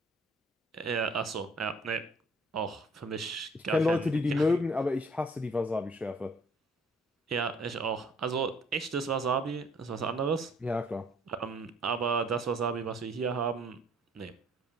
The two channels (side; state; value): both; normal; correlation 0.59